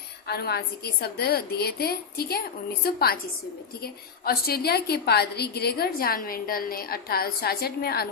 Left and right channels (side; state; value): right; quieter; 6.1 dB